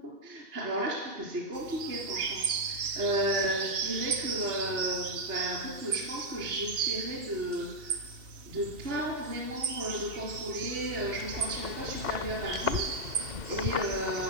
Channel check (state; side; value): late; left; 2.7 ms